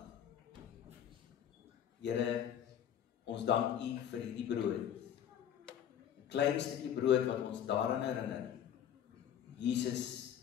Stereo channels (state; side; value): quieter; right; 9.8 dB